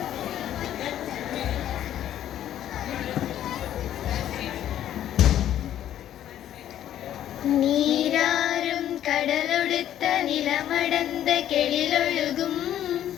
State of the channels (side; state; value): right; quieter; 11.4 dB